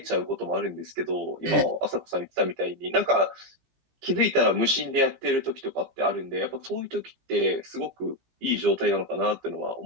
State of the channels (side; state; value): left; late; 17 ms